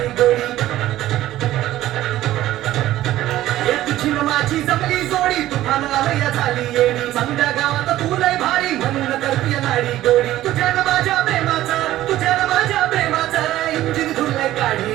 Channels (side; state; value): left; quieter; 14.5 dB